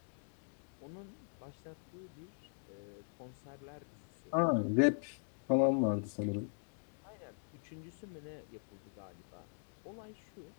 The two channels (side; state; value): right; silent; digital silence